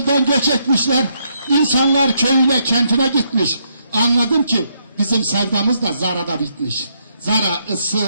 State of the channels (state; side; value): inverted; both; correlation -0.76